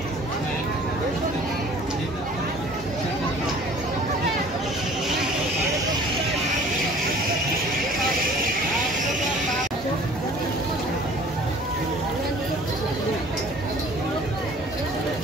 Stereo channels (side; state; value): both; normal; correlation 0.49